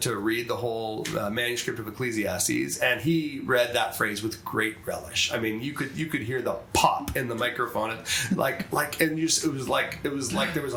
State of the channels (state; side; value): identical; both; correlation 1.00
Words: read the whole manuscript of Ecclesiastes, and he read that phrase with great relish. I mean, you could hear the pop in the microphone, and it was like there was